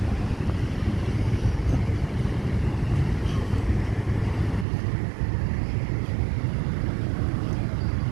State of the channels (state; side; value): drops out; left; at 4.7 s